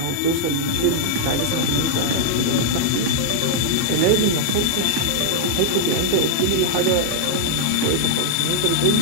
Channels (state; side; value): different; both; correlation -0.01